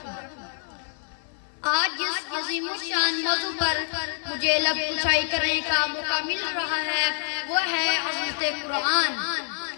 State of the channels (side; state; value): right; silent; digital silence